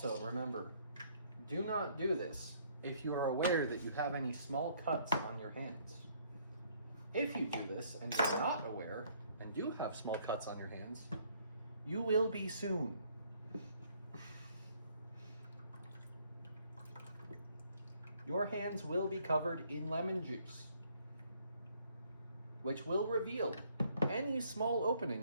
remember, do not do this if you are aware that you have any small cuts on your hands. If you do this and you're not aware and do have small cuts on your hands, you will be soon. Your hands will be covered in lemon juice, which will reveal any small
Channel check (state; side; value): inverted; both; correlation -0.64